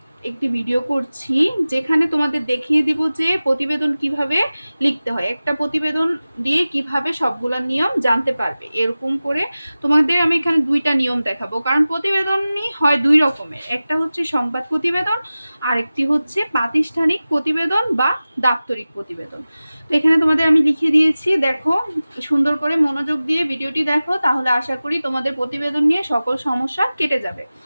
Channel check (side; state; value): both; inverted; correlation -0.96